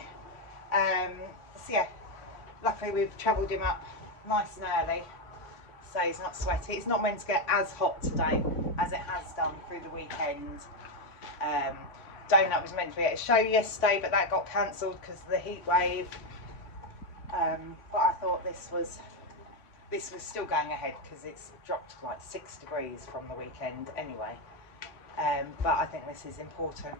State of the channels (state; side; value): late; right; 3.5 ms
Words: So yeah, luckily we've travelled him up nice and early, so he's not sweaty. It's not meant to get as hot today as it has done through the weekend. Donut was meant to be at a show yesterday, but that got cancelled because of the heat wave. But I thought this was still going ahead because it's dropped like 6 degrees from the weekend anyway. But I think this is important